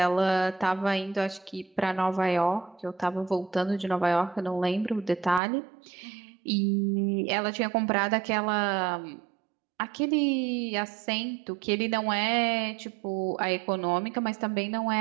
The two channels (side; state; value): left; drops out; at 5.4 s